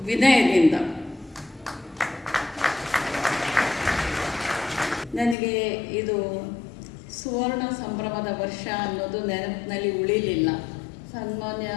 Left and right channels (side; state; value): right; drops out; at 5.4 s